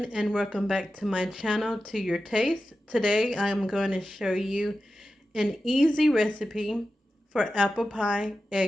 and welcome back to my channel, To Your Taste. Today I'm going to show you an easy recipe for apple pie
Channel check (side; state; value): both; normal; correlation 0.92